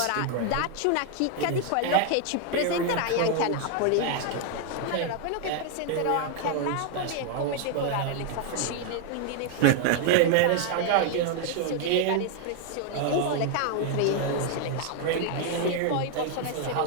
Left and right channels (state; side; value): different; both; correlation 0.00